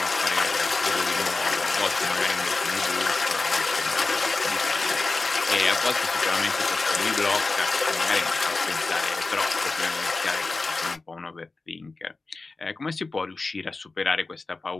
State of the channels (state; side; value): quieter; right; 3.6 dB